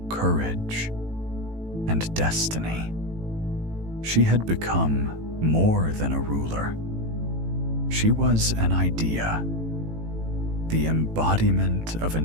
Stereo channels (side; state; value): left; late; 18 ms